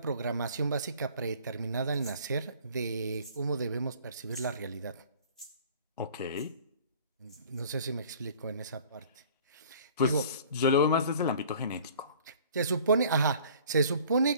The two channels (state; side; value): inverted; both; correlation -0.50